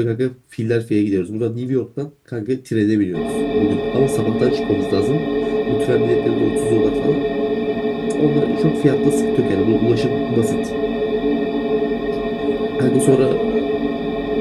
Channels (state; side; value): identical; both; correlation 1.00